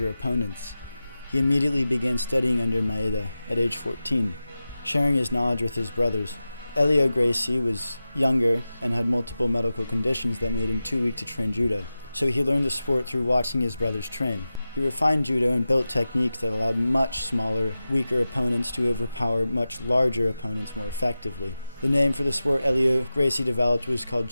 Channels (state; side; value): inverted; both; correlation -0.94